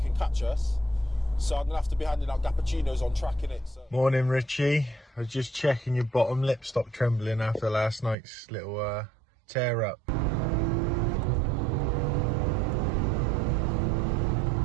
catch us. So I'm going to have to be handing out cappuccinos on track in it. So. Morning, Richie. I was just checking your bottom lip stopped trembling after last night's little Tear up.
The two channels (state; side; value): drops out; left; at 8.2 s